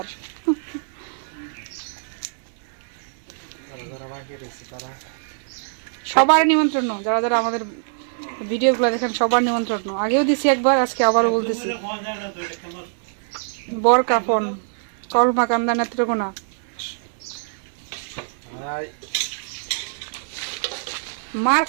সবার নিমন্ত্রণ, যারা যারা আমাদের ভিডিওগুলো দেখেন সবার নিমন্ত্রণ। আগেও দিছি একবার, আজকে আবারও বলতেছি। বর কাফন কলমা কান্দা নেত্রকোনা। মার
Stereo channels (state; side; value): silent; left; 63 dB below the other